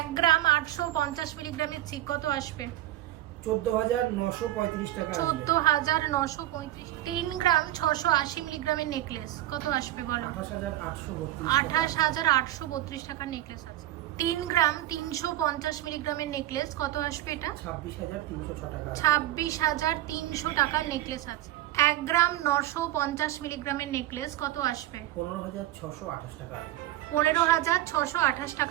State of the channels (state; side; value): quieter; left; 14.6 dB